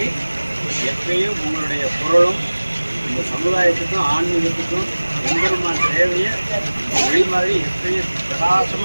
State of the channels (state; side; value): inverted; both; correlation -1.00